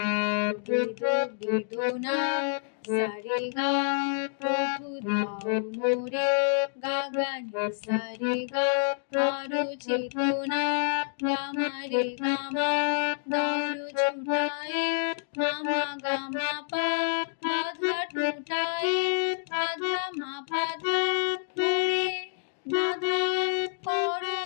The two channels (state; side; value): silent; right; digital silence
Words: বেদনা সারে গা প্রভু দাও মোরে গা গা নি সারে গা আরো চেতনা গামারে গামা দারু ছুটায়ে মামা গামা পা বাধা টুটায়ে বাধা মা বাধা মোরে বাধা করো